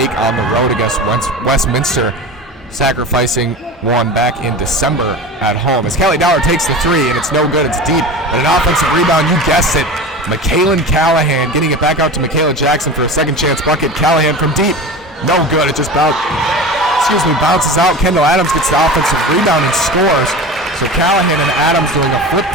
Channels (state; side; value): normal; both; correlation 0.31